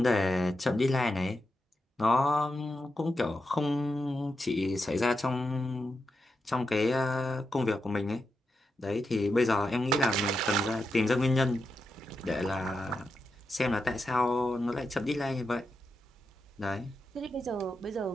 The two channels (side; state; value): both; normal; correlation 0.87